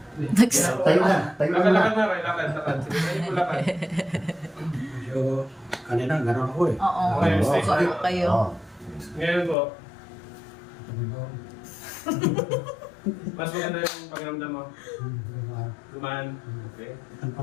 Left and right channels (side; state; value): right; drops out; at 9.6 s